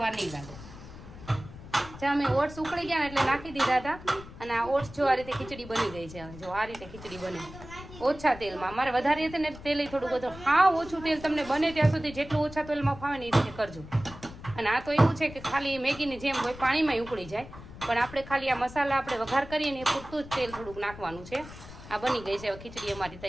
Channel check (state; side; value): noise; left; rumble, 15 dB below the sound